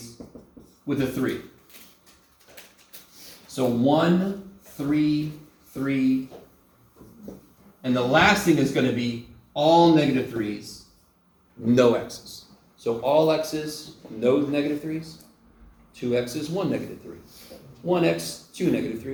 with a 3. So 1, 3, 3. And the last thing is going to be all negative 3's, no x's. So all x's, no negative 3's. 2 x's, 1 negative 3. 1x, 2 negative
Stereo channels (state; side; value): identical; both; correlation 1.00